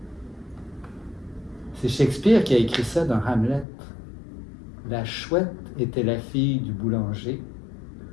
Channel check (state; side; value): drops out; right; at 3.7 s